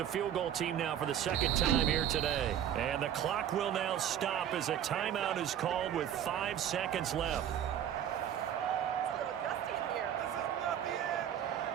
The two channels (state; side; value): quieter; left; 10.0 dB